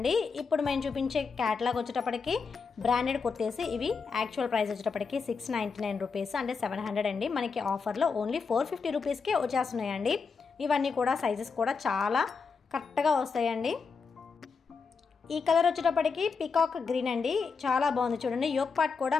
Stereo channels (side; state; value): right; quieter; 5.1 dB